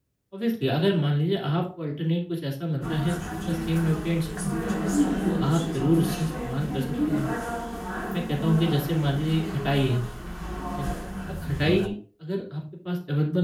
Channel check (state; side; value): identical; both; correlation 1.00